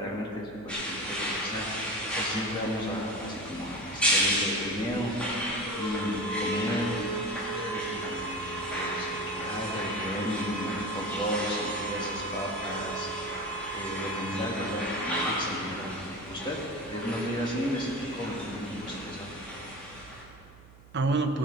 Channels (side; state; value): right; noise; hum, 22 dB below the sound